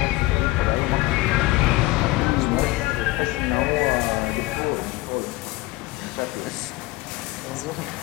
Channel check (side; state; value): right; quieter; 19.6 dB